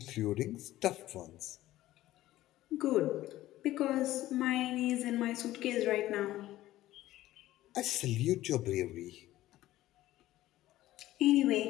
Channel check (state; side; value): quieter; right; 15.3 dB